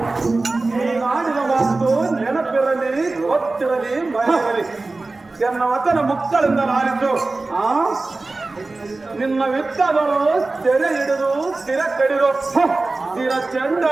ನಾಡಿನ ಮಾತು ನೆನಪಿರಲಿ, ಗೊತ್ತಿರಲಿ, ಮರೆಯಲಿ ಎನ್ನ ವಚನ ಮುಕ್ತಳಿಂದ ನಾರಿದ್ದು. ನಿನ್ನ ವಿತ್ತದವರು ಸೆರೆ ಹಿಡಿದು ಸ್ಥಿರ ಕಡಿದು ಸ್ಥಿರ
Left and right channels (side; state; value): left; quieter; 3.4 dB